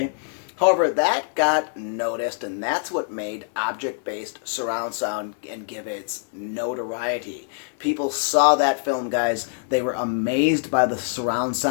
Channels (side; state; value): right; silent; digital silence